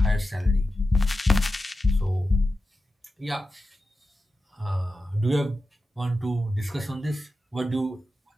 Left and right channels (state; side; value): normal; both; correlation 0.91